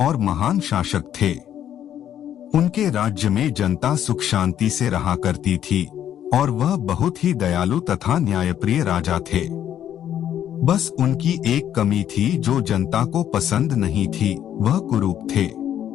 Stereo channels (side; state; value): right; quieter; 10.4 dB